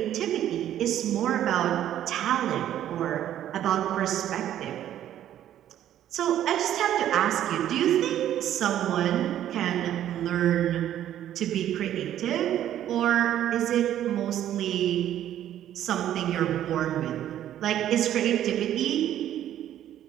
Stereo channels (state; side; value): quieter; left; 11.5 dB